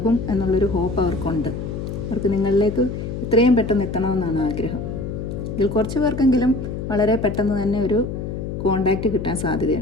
എന്നുള്ളൊരു ഹോപ്പ് അവർക്കുണ്ട്. അവർക്ക് നിങ്ങളിലേക്ക് എത്രയും പെട്ടെന്ന് എത്തണമെന്നാണ് ആഗ്രഹം. ഇതിൽ കുറച്ച് പേർക്കെങ്കിലും വളരെ പെട്ടെന്ന് തന്നെ ഒരു കോണ്ടാക്റ്റ് കിട്ടാൻ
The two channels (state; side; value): noise; left; hum, 6 dB below the sound